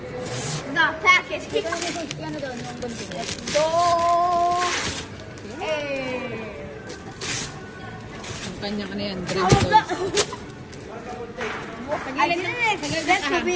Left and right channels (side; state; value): both; identical; correlation 1.00